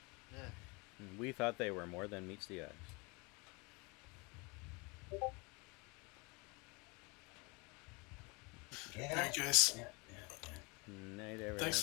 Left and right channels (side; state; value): right; quieter; 28.4 dB